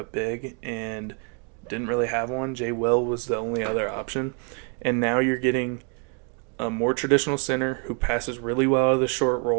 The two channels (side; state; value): left; quieter; 37.0 dB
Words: big and didn't really have one. Jay Will was the only other option. And now you're getting a more traditional center who passes really well out of the short